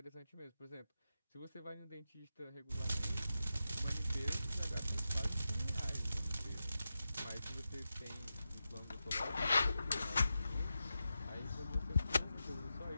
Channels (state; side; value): inverted; both; correlation -0.90